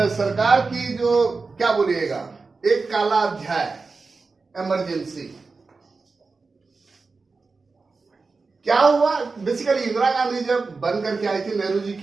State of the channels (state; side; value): quieter; left; 4.2 dB